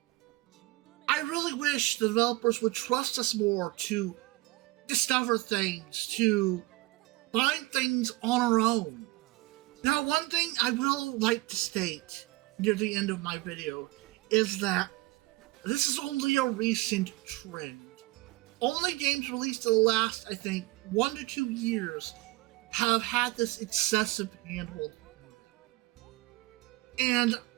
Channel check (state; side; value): quieter; left; 20.9 dB